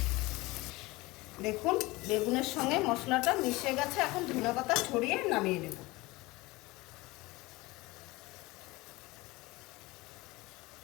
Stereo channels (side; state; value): right; quieter; 21.5 dB